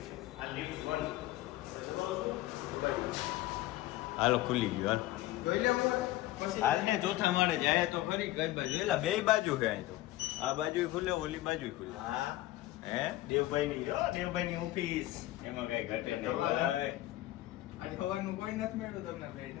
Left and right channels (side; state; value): right; quieter; 16.4 dB